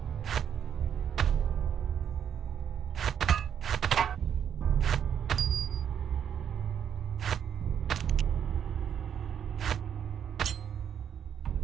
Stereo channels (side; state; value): left; quieter; 8.6 dB